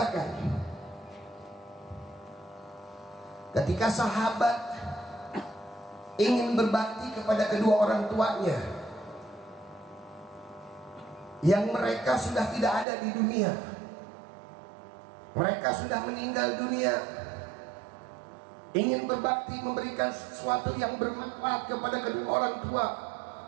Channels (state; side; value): drops out; left; at 12.9 s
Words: ketika sahabat ingin berbakti kepada kedua orang tuanya yang mereka sudah tidak ada di dunia, mereka sudah meninggal dunia, ingin berbakti, memberikan sesuatu yang bermanfaat kepada kedua orang tua,